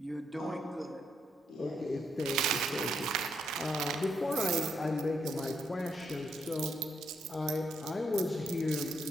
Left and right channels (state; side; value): normal; both; correlation 0.78